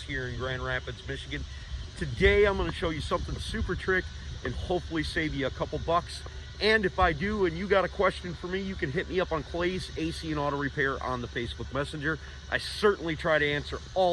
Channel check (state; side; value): identical; both; correlation 1.00